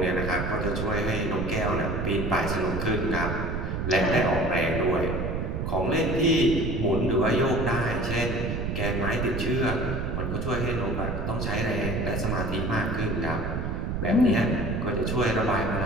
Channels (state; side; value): noise; right; rumble, 2 dB below the sound